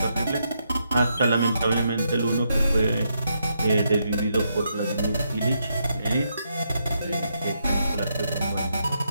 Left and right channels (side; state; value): both; inverted; correlation -0.80